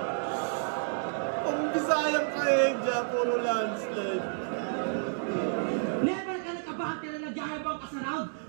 Pampisayang trahedya, puro landslide. Never ka nakabate na nagyayabang ka sa round.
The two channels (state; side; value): silent; left; digital silence